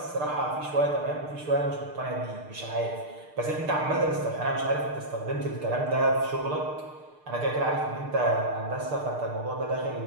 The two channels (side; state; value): left; late; 6.6 ms